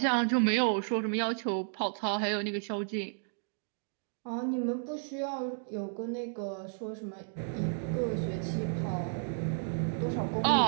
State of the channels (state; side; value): silent; left; digital silence